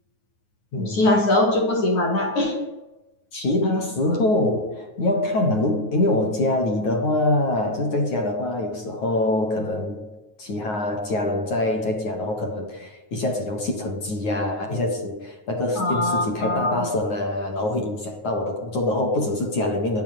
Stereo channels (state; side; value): late; right; 9.5 ms